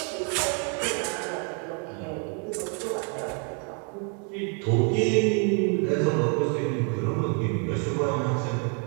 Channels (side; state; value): left; quieter; 39.9 dB